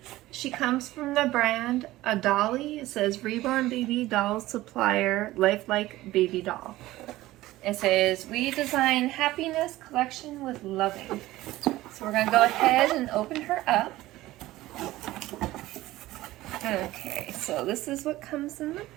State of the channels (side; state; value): left; quieter; 16.8 dB